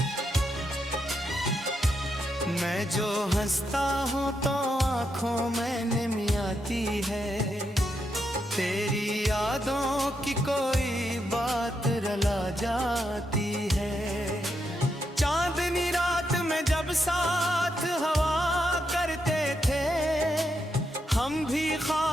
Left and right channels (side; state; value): both; normal; correlation 0.82